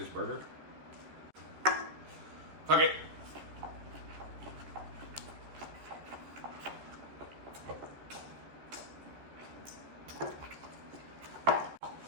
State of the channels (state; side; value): late; left; 14 ms